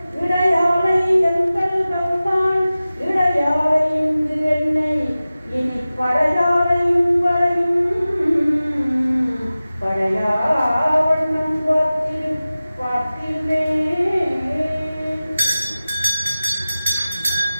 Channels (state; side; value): inverted; both; correlation -0.96